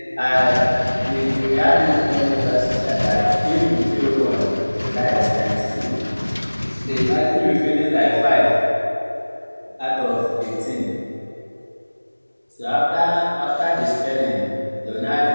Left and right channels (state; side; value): inverted; both; correlation -1.00